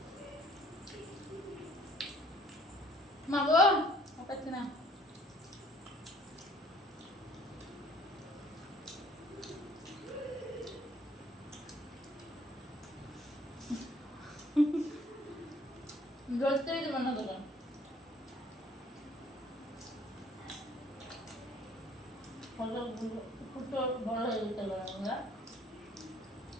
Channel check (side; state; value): both; normal; correlation 0.58